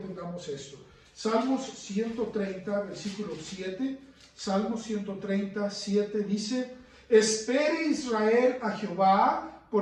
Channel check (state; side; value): identical; both; correlation 1.00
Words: esto. Salmos 130, versículo 7. Salmos 130, 7 dice: espere Israel a Jehová,